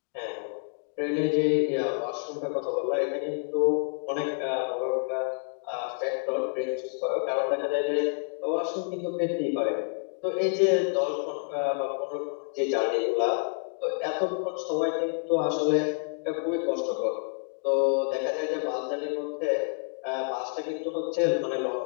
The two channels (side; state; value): right; silent; 59 dB below the other